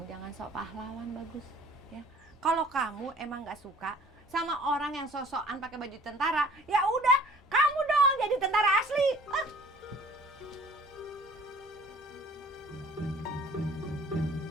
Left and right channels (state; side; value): normal; both; correlation 0.51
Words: jangan sok pahlawan, Bagus. Ya, kalau kamu emang nggak suka sama orang yang sosokan pakai baju tentara, ya udah, kamu dong jadi tentara asli.